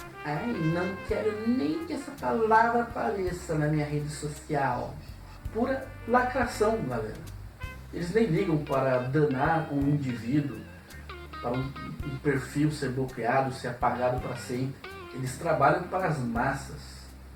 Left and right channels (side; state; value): both; identical; correlation 1.00